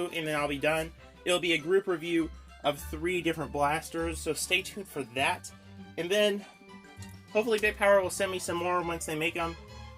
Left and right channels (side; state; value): both; identical; correlation 1.00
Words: and then I'll be done. It'll be a group review of 3 different blasters, so stay tuned for that. And then, hopefully Big Power will send me some more once they make them,